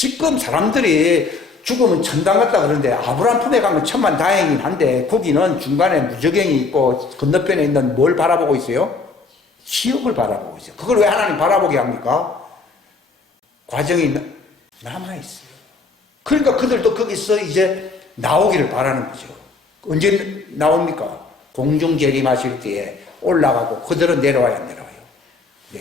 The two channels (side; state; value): right; quieter; 4.2 dB